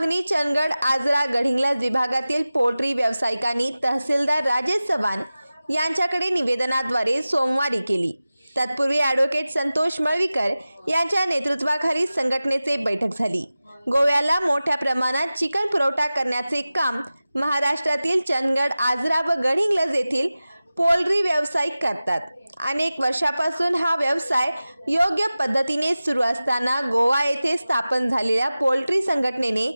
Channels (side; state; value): both; inverted; correlation -0.96